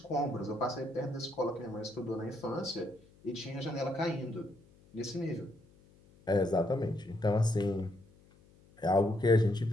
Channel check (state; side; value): noise; left; hum, 27 dB below the sound